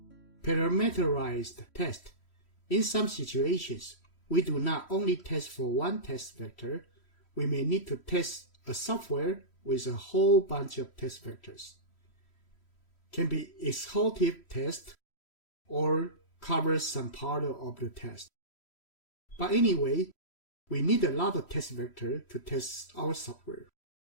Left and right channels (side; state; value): right; late; 3.1 ms